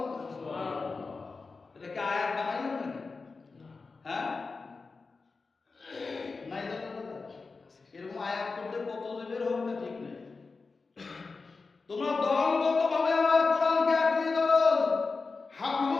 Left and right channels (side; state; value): right; quieter; 4.2 dB